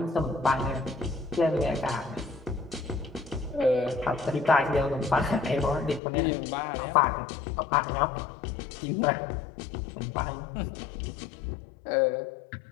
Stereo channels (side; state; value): right; drops out; at 6.0 s